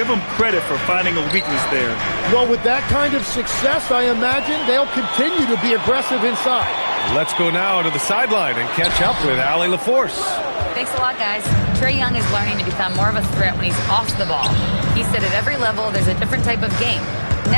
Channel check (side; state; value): both; inverted; correlation -1.00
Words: them credit for finding a weakness there. Well, with that kind of success, I imagine they'll continue to be aggressive inside. Let's go now to the sideline and catch up with Allie LaForce. Thanks a lot, guys. Trae Young is learning to become more of a threat when he's off the ball. He said at every level there's a different type of game.